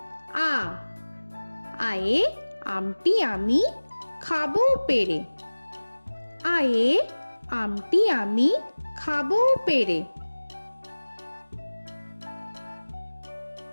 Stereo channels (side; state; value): both; inverted; correlation -1.00